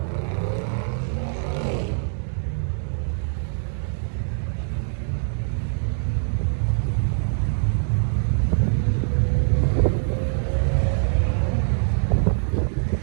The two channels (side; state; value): left; silent; digital silence